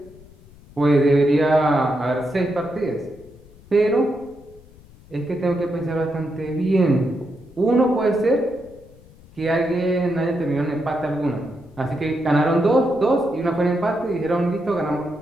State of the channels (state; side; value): noise; left; rumble, 24 dB below the sound